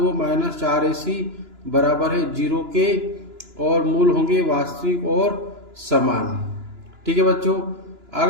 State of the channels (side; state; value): left; late; 2.9 ms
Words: माइनस 4ac बराबर है 0 के और मूल होंगे वास्तविक और समान। ठीक है बच्चों।